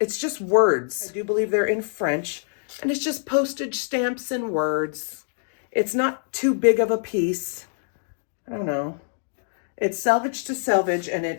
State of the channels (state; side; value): silent; right; digital silence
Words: just words. I do believe they're in French. And it's just postage stamps and words. It's not too big of a piece. I don't know. It's selvage to selvage, and